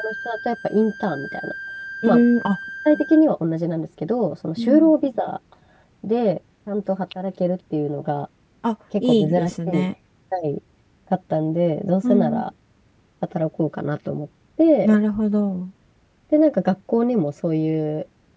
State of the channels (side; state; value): both; identical; correlation 1.00